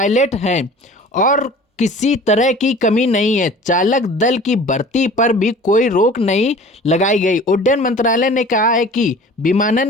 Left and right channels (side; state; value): both; normal; correlation 0.44